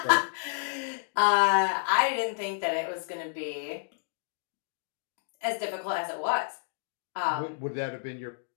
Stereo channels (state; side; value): silent; right; digital silence